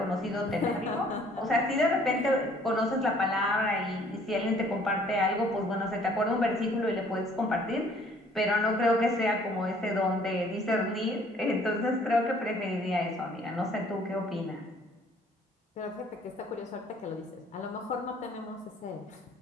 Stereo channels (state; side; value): normal; both; correlation 0.58